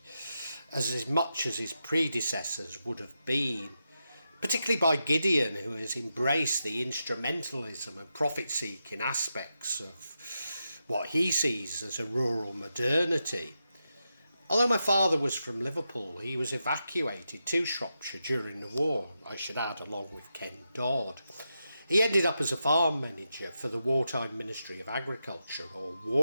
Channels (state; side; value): inverted; both; correlation -0.87